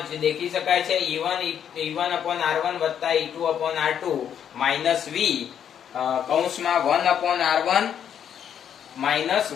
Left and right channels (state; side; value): quieter; right; 8.9 dB